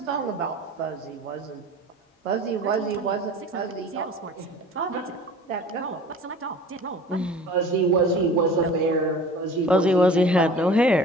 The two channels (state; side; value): normal; both; correlation 0.42